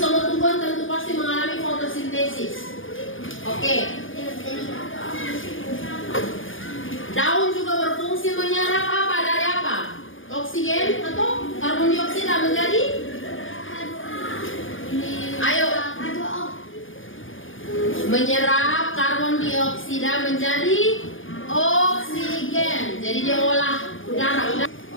tumbuhan tentu pasti mengalami fotosintesis. Oke. Daun juga berfungsi menyerap apa dari apa? Oksigen atau karbon dioksida menjadi? Ayo. Menyerap karbon dioksida menjadi oksigen. Jadi dia olah udara.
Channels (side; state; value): right; late; 0.58 ms